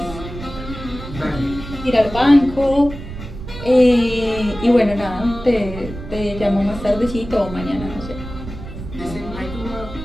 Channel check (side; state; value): right; noise; rumble, 11 dB below the sound